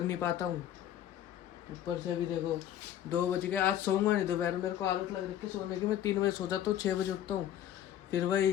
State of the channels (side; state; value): right; quieter; 11.2 dB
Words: नहीं पाता हूँ। ऊपर से अभी देखो 2 बज गए, आज सोऊंगा नहीं दोपहर। मेरे को आदत लग रही है सोने की, मैं 3 बजे सो जाता हूँ, 6 बजे उठता हूँ। फिर